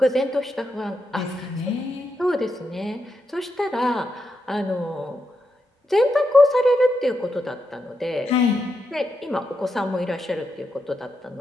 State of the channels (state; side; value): normal; both; correlation 0.85